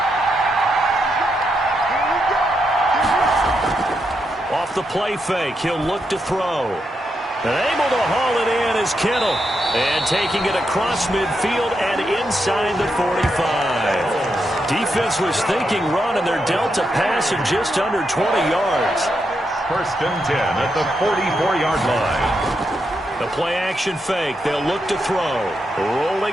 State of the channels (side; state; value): both; normal; correlation 0.83